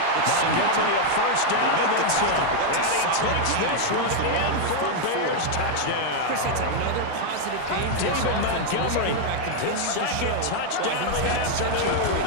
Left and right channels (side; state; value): both; different; correlation 0.01